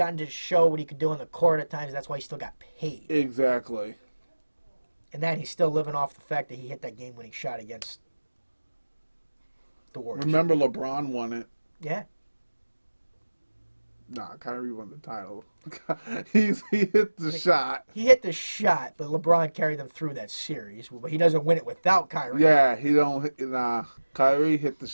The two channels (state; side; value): inverted; both; correlation -1.00